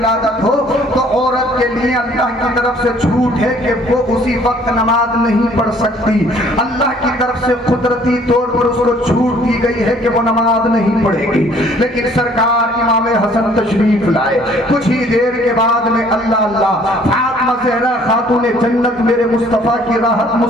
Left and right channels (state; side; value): normal; both; correlation 0.58